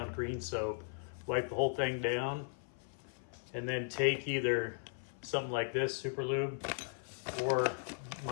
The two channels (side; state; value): right; silent; 53 dB below the other